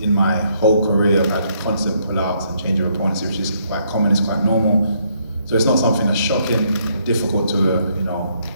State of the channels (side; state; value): both; inverted; correlation -0.71